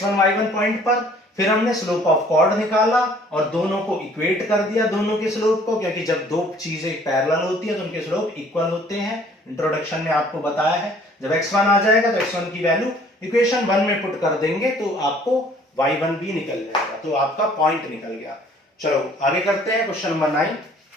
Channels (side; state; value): both; normal; correlation 0.56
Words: y1 पॉइंट पर, फिर हमने स्लोप ऑफ कॉर्ड निकाला और दोनों को इक्वेट कर दिया, दोनों के स्लोप को, क्योंकि जब दो चीजें पैरेलल होती है तो उनके स्लोप इक्वल होते हैं। इंट्रोडक्शन में आपको बताया है, जब x1 आ जाएगा तो x1 की वैल्यू इक्वेशन 1 में पुट कर देंगे तो आपको y1 भी निकल जाएगा, तो आपका पॉइंट निकल गया। चलो आगे करते हैं क्वेश्चन नंबर 9,